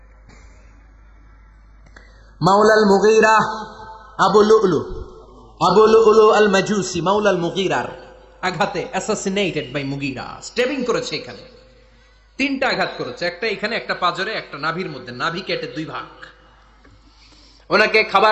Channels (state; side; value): identical; both; correlation 1.00